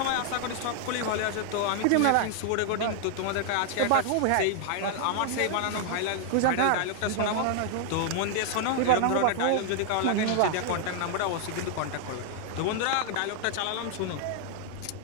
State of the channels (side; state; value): both; different; correlation 0.00